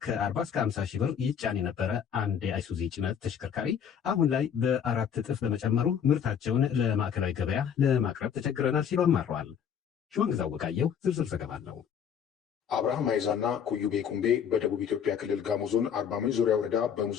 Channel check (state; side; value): quieter; right; 8.0 dB